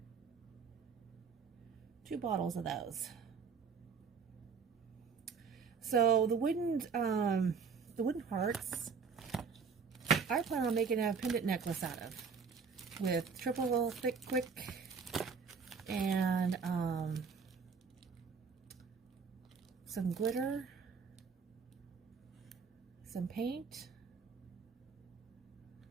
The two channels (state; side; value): quieter; left; 5.7 dB